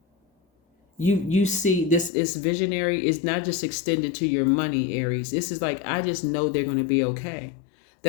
You see, this is visionary is not just extended to your money, Aries. This is like, I just know they're going to be okay.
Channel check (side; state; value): right; drops out; at 2.1 s